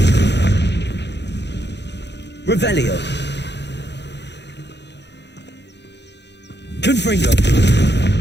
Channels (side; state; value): right; late; 0.50 ms